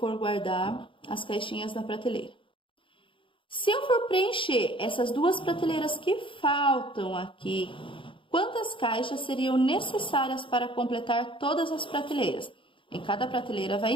guardar as caixinhas na prateleira. Se eu for preencher essas 2 prateleiras que faltam aqui, quantas caixas seriam necessárias para completar todas as prateleiras? Em cada prateleira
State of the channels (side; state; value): right; late; 0.25 ms